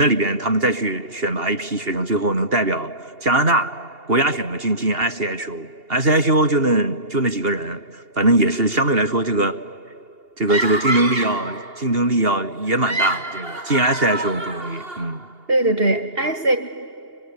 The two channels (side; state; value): left; late; 2.8 ms